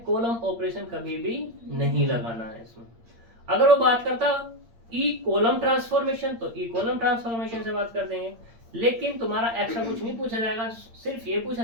कॉलम ऑपरेशन कभी भी नहीं लगाना है इसमें। अगर वो बात करता ई कॉलम ट्रांसफॉर्मेशन तो ई कॉलम ट्रांसफॉर्मेशन से बात कर देंगे, लेकिन तुम्हारा एक्स्ट्रा कुछ नहीं पूछा जाएगा, सिर्फ ये पूछा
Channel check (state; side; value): late; left; 8.7 ms